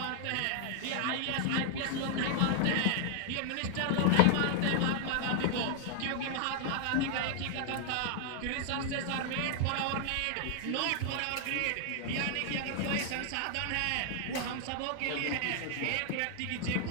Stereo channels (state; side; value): different; both; correlation 0.00